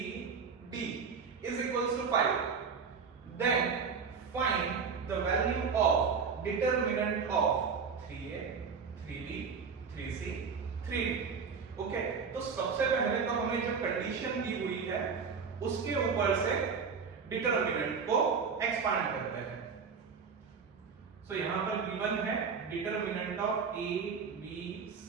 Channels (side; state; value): left; quieter; 5.7 dB